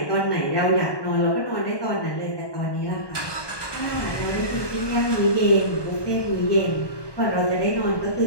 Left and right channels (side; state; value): right; late; 1.2 ms